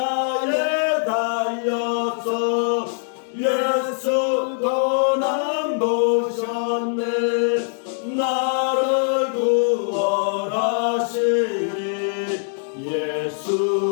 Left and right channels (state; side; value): silent; right; digital silence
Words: 달려서 예수 고난 보셨네 나를 구원하시리